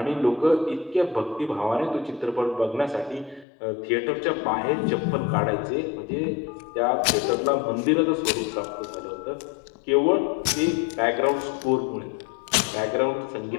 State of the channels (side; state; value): right; drops out; at 3.5 s